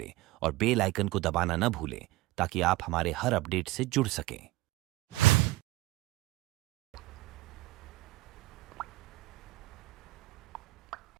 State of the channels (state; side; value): quieter; left; 18.9 dB